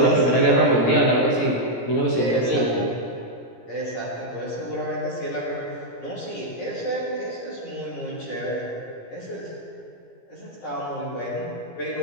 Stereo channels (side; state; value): right; late; 17 ms